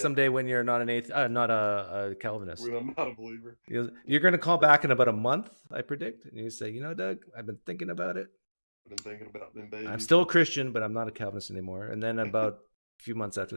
when you're not not a Calvinist. When I'm not a believer. You're going to call back in about a month, I predict, and you say, Doug, I've been thinking about it. I've been thinking about them babies. I'm still a Christian, but I'm not a Calvinist anymore. And then about a few months after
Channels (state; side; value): inverted; both; correlation -1.00